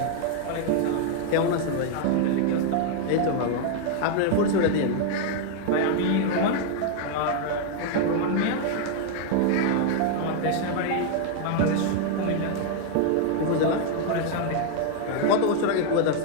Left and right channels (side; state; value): both; different; correlation 0.00